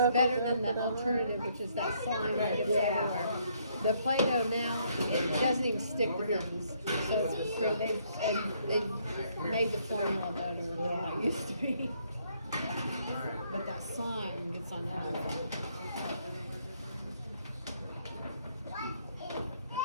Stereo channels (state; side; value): inverted; both; correlation -0.69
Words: better than the alternative, which is that slime that gets everywhere. The Play-Doh now, it doesn't even stick to things. So they've made the formula better than what it used to be. But that slime gets on everything.